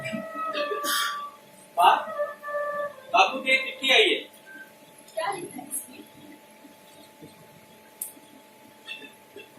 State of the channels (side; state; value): both; identical; correlation 1.00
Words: बापू की एक चिट्ठी आई है। क्या लिखा है इसमें?